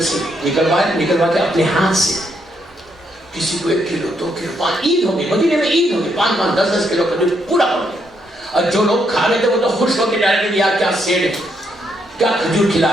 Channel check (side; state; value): both; normal; correlation 0.76